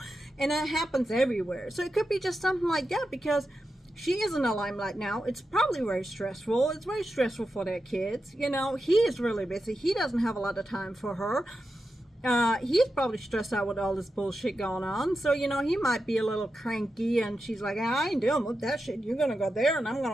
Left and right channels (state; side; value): normal; both; correlation 0.89